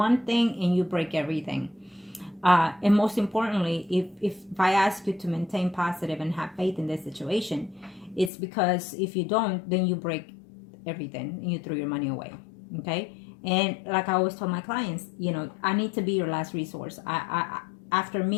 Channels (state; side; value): drops out; right; at 8.3 s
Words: thing and you break everything. And most importantly, if I ask you to maintain positive and have faith in this situation, it's because if you don't, then you break everything and you throw your money away, okay? And like I always tell my clients, I need to be your last resource. After